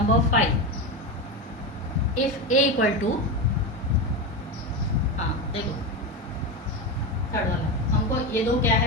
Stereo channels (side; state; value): both; normal; correlation 0.17